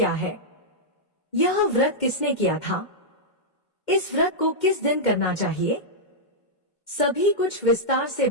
है? यह व्रत किसने किया था? इस व्रत को किस दिन करना चाहिए? सभी कुछ विस्तार से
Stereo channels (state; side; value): late; right; 2.1 ms